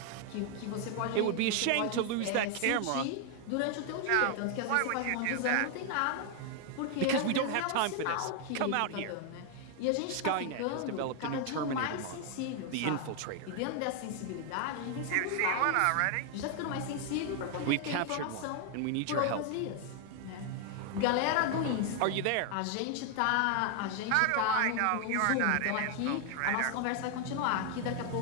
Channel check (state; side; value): different; both; correlation 0.00